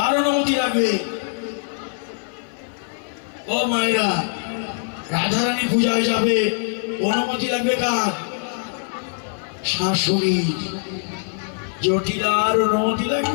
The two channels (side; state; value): right; silent; 64 dB below the other